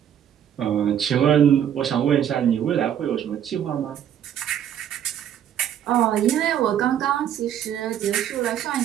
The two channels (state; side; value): quieter; left; 9.8 dB